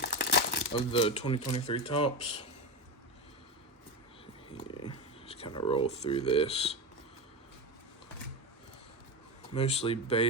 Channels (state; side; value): normal; both; correlation 0.18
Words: of the 2023 Topps. Yeah, just kind of roll through this. Mostly